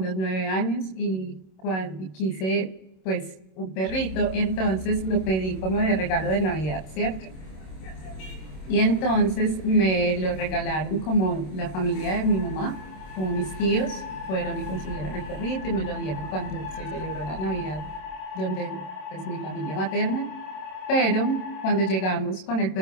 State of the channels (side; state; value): right; late; 27 ms